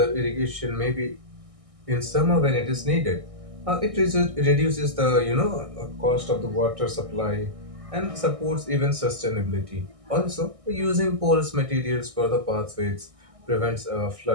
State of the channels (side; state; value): left; late; 1.6 ms